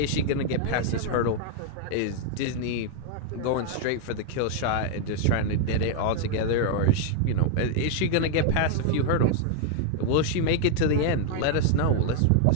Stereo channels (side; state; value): both; different; correlation 0.00